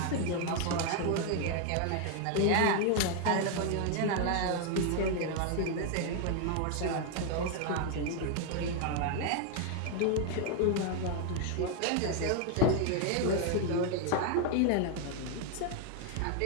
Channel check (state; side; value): different; both; correlation 0.01